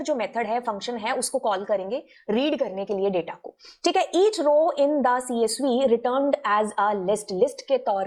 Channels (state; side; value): identical; both; correlation 1.00